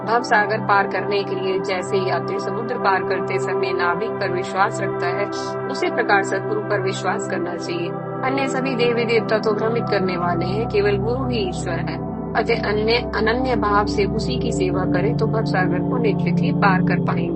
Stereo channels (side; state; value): both; identical; correlation 1.00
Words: भव सागर पार करने के लिए जैसे यात्री समुद्र पार करते समय नाविक पर विश्वास रखता है, उसी प्रकार सदगुरु पर विश्वास करना चाहिए। अन्य सभी देवी देवता तो भ्रमित करने वाले हैं, केवल गुरु ही ईश्वर है। अतः अनन्य भाव से उसी की सेवा करें तो भव सागर को निश्चित ही पार कर